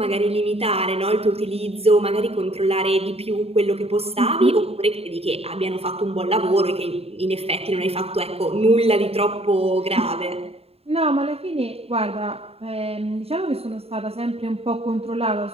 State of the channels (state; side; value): late; left; 0.29 ms